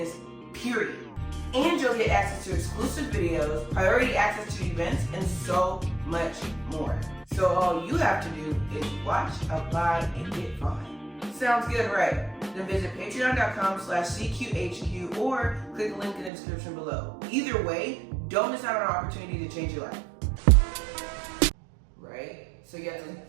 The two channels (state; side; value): drops out; left; at 16.3 s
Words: period. And you'll get access to exclusive videos, priority access to events, and so much more. So all you have to do is watch, apply, and get fine. Sounds good, right? Then visit patreon.com/CQHQ or click the link in the description below. Either way, don't miss out on an opportunity to change your life. Right? So you have to,